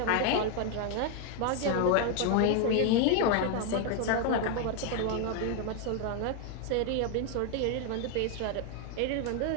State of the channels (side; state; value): both; different; correlation 0.01